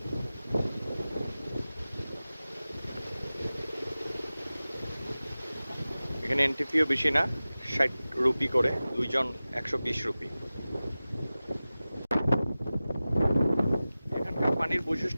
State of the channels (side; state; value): both; inverted; correlation -0.97